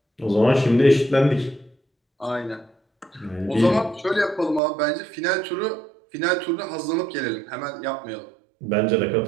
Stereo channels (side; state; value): left; drops out; at 4.6 s